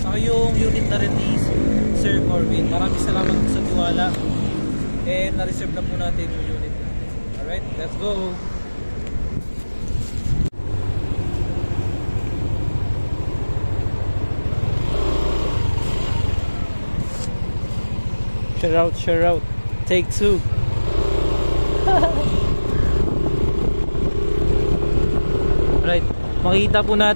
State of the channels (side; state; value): both; inverted; correlation -1.00